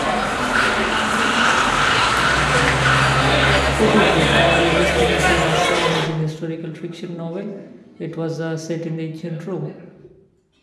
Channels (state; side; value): identical; both; correlation 1.00